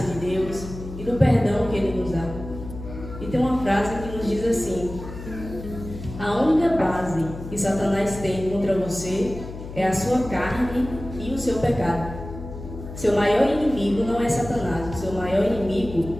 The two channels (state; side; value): noise; left; hum, 11 dB below the sound